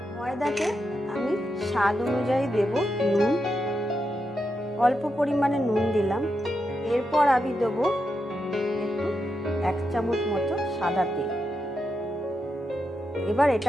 ময়দাতে আমি স্বাদ অনুযায়ী দেব নুন, অল্প পরিমাণে নুন দিলাম। এরপর আমি দেবো একটু 1 চামচ মতো সাদা তেল। এবার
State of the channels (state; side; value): normal; both; correlation 0.85